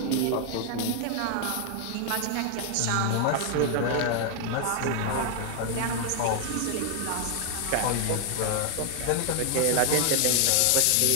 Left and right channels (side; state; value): both; different; correlation 0.00